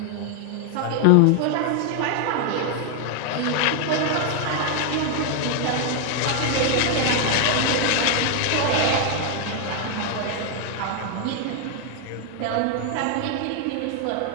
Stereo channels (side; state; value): both; different; correlation 0.00